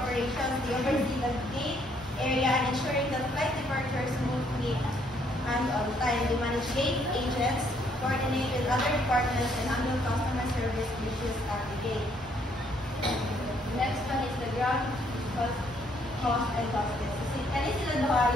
They oversee the gate area and ensuring that flight departures smoothly and on time. They manage gate agents, coordinate with other departments, and handle customer service issues at the gate. The next one is the ground host and hostess. Kani sila duha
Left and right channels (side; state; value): both; normal; correlation 0.68